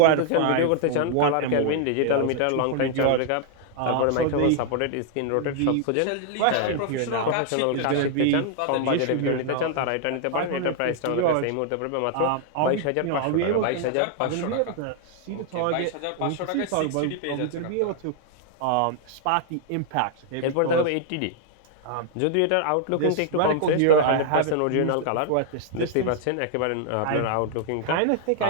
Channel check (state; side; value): different; both; correlation 0.00